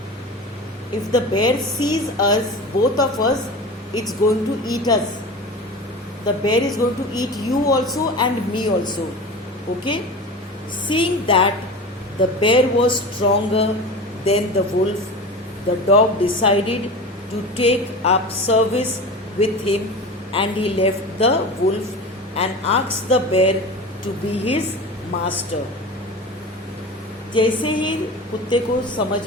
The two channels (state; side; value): normal; both; correlation 0.31